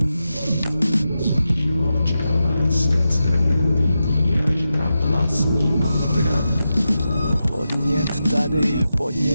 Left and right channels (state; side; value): inverted; both; correlation -0.90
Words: Sní v čele, srdce nevidí až na vlastní potravu. Podnět tady,